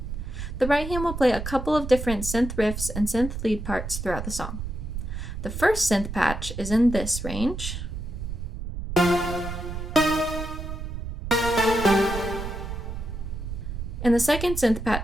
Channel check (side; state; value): right; noise; rumble, 6 dB below the sound